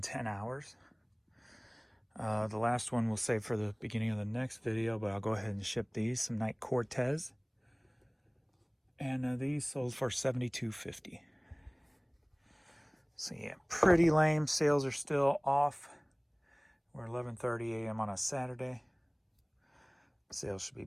10 hours. The last one we'll save for the beginning of the next video, but I'll go ahead and ship these. Some Night Cortez, and these sold for $72.50. So yeah, pretty lame. Sales are still off. We're 11:30 a.m. on a Saturday. Sales should be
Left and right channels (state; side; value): identical; both; correlation 1.00